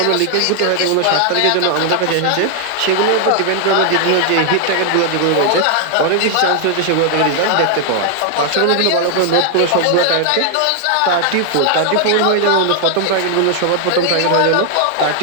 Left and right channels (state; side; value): different; both; correlation 0.00